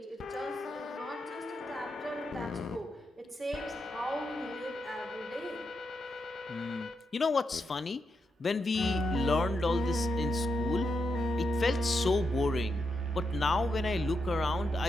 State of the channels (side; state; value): both; normal; correlation 0.84